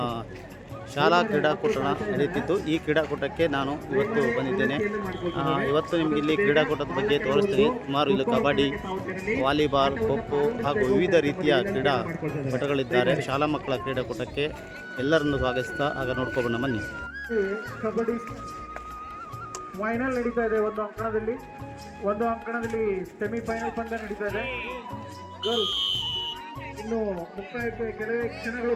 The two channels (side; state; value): both; identical; correlation 1.00